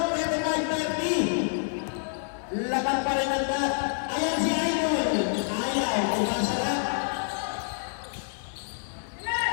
35-30. Laban pa rin ang bat. Ayan si Idol. Ayaw. Umasa lang.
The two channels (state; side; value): silent; right; digital silence